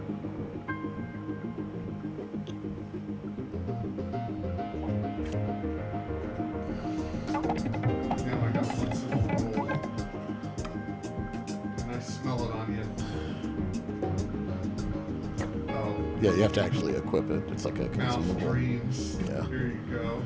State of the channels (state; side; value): identical; both; correlation 1.00